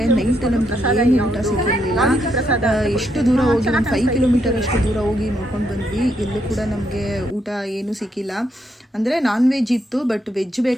ನೈಟ್ ನಮ್ಗೆ ಏನು ಊಟ ಸಿಕ್ಕಿರಲಿಲ್ಲ. ಎಷ್ಟು ದೂರ ಹೋಗಿ, ಒಂದು 5 ಕಿಲೋಮೀಟರ್ ಅಷ್ಟು ದೂರ ಹೋಗಿ ನೋಡ್ಕೊಂಡು ಬಂದ್ವಿ. ಎಲ್ಲೂ ಕೂಡ ನಮಗೆ ಊಟ ಏನೂ ಸಿಕ್ಕಿಲ್ಲ. ಅಂದರೆ ನಾನ್ ವೆಜ್ ಇತ್ತು, ಬಟ್ ವೆಜ್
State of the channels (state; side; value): normal; both; correlation 0.77